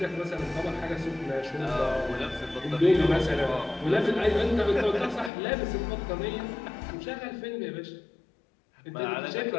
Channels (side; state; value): right; drops out; at 5.3 s